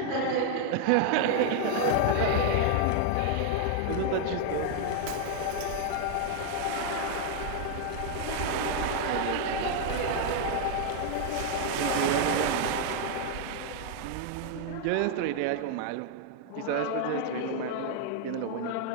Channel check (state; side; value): different; both; correlation 0.00